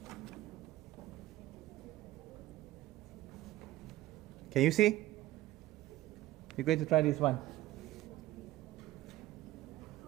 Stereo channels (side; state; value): left; quieter; 15.8 dB